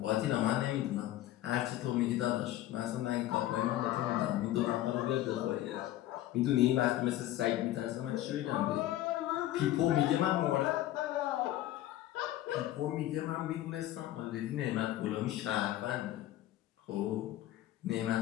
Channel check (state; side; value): quieter; right; 14.2 dB